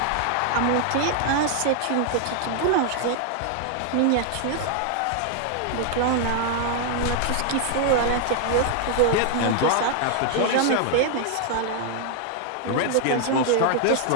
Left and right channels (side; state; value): both; different; correlation 0.00